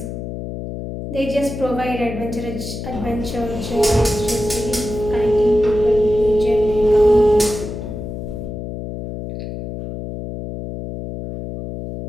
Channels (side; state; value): left; noise; hum, 8 dB below the sound